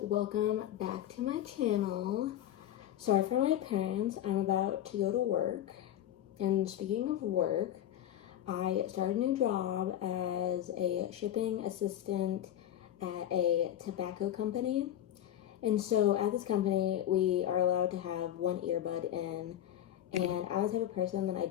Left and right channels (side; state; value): right; quieter; 11.7 dB